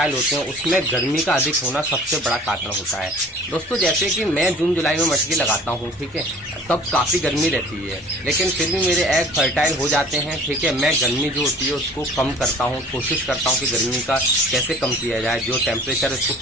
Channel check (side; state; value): both; normal; correlation 0.48